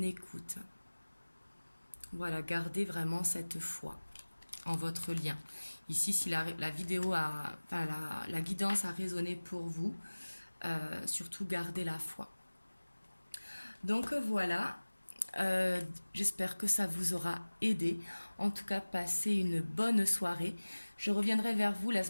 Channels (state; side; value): inverted; both; correlation -1.00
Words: écoute. Voilà, gardez vraiment cette foi en votre lien. Ici, si la vidéo la guidance a résonné pour vous, surtout gardez la foi. Donc voilà, J'espère que ça vous aura aidé. En tout cas, passez une bonne soirée. Je reviendrai vers vous la